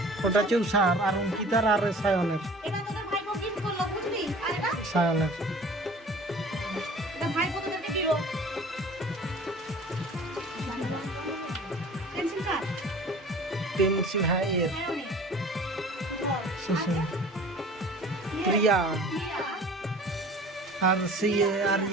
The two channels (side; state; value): both; normal; correlation 0.45